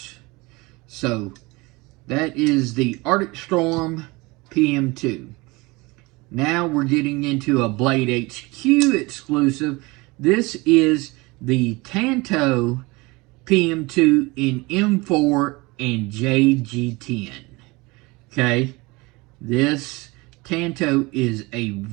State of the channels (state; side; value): quieter; left; 24.0 dB